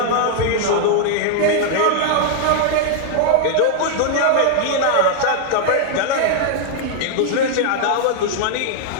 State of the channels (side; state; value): both; different; correlation 0.00